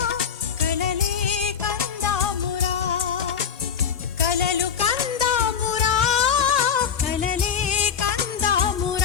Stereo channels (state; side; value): quieter; right; 7.3 dB